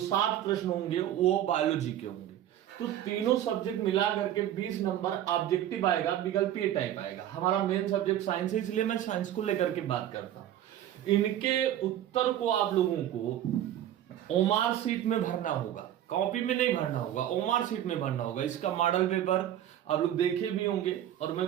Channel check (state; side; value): quieter; left; 11.6 dB